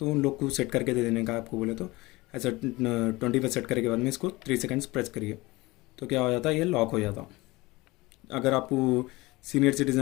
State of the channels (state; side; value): quieter; right; 21.5 dB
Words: उन लोग को सेट करके दे देने का आपको बोले तो ऐसा 20 पे सेट करने के बाद में इसको 3 सेकंड्स प्रेस करिए तो क्या हो जाता है, ये लॉक हो जाता। अगर आपको सीनियर